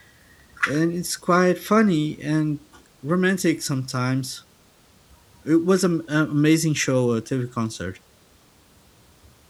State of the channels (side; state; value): both; identical; correlation 1.00